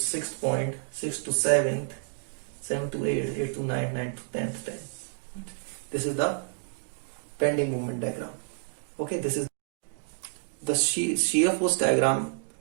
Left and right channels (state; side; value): silent; left; digital silence